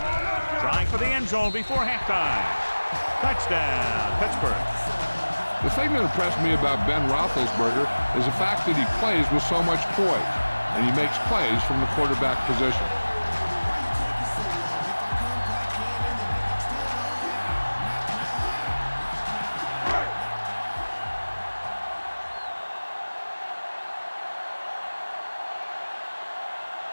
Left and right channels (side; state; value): both; inverted; correlation -1.00